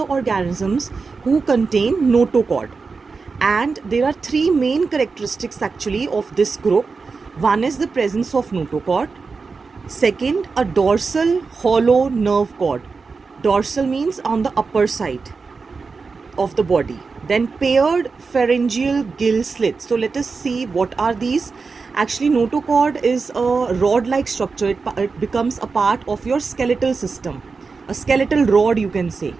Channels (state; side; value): quieter; left; 4.6 dB